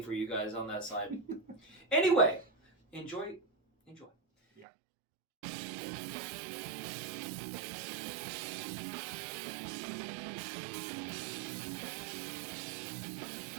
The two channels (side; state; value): left; drops out; at 4.7 s